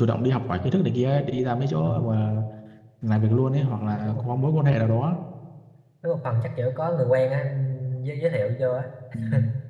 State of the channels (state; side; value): identical; both; correlation 1.00